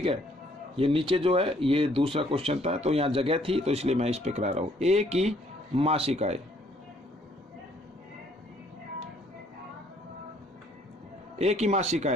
है। ये नीचे जो है ये दूसरा क्वेश्चन था, तो यहाँ जगह थी तो इसलिए मैं इस पे करा रहा हूँ। ए की मासिक आय, ए की मासिक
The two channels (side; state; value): both; normal; correlation 0.64